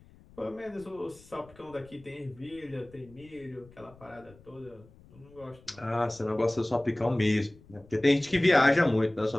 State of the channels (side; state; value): left; noise; rumble, 25 dB below the sound